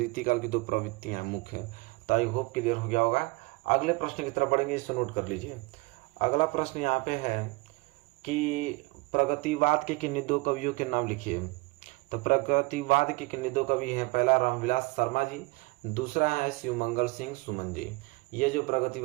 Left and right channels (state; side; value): quieter; left; 25.3 dB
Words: की दो प्रवृत्तियां मुख्य। तो आई होप क्लियर हो गया होगा। अगले प्रश्न की तरफ बढ़ेंगे, इसे नोट कर लीजिए। अगला प्रश्न यहाँ पे है कि प्रगतिवाद के किन्हीं दो कवियों के नाम लिखिए। तो प्रगतिवाद के किन्हीं दो कवि हैं, पहला रामविलास शर्मा जी, दूसरा है शिवमंगल सिंह सुमन जी। ये जो